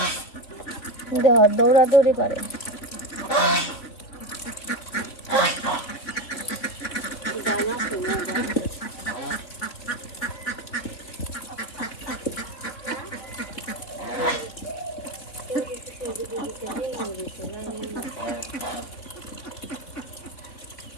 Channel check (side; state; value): right; late; 3.7 ms